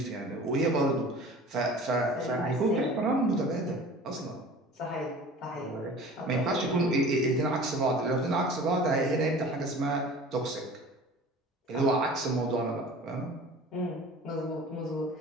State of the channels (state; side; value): normal; both; correlation 0.42